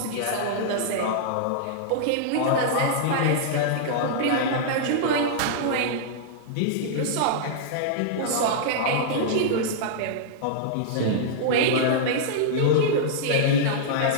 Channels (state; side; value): different; both; correlation -0.02